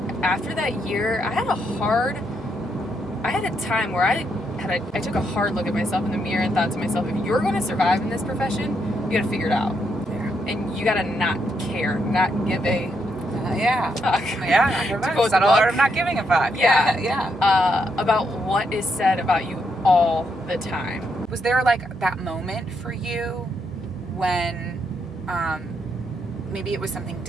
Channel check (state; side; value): normal; both; correlation 0.78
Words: after that year, I had a time where I took a hard look at myself in the mirror and thought to myself, if you're going to survive in this profession, you got to figure it out. Yeah. And you got to not care, not give a fuck. I'm not giving a fuck. Yeah. About what is said about you all the time. Was there like that moment for you when maybe it was something